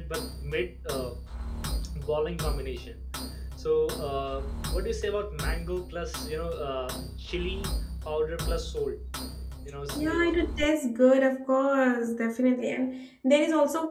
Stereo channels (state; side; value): identical; both; correlation 1.00